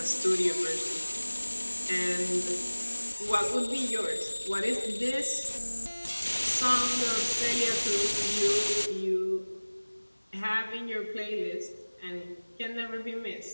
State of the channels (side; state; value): both; inverted; correlation -1.00